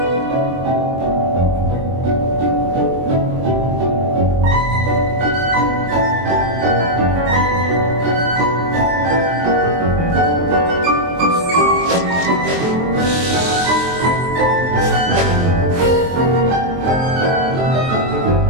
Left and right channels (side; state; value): left; late; 23 ms